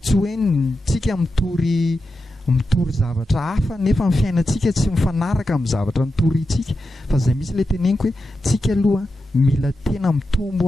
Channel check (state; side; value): normal; both; correlation 0.89